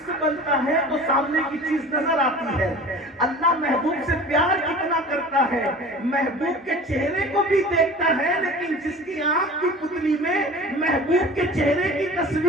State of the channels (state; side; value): normal; both; correlation 0.40